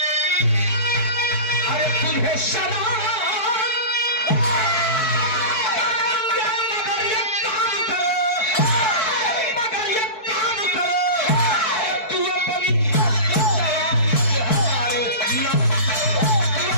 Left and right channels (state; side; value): late; right; 4.6 ms